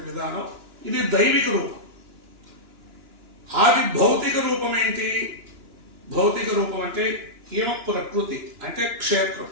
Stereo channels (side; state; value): left; late; 2.9 ms